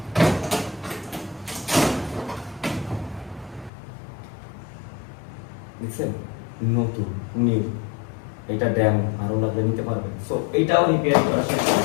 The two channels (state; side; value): drops out; right; at 3.7 s